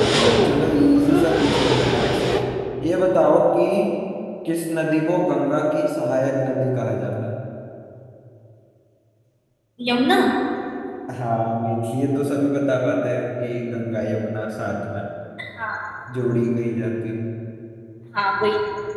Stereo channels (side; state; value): both; identical; correlation 1.00